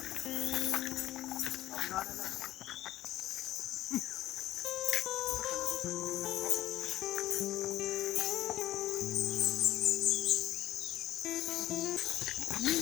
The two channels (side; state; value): right; quieter; 14.5 dB